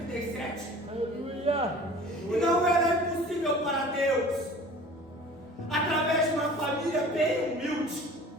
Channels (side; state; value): both; normal; correlation 0.44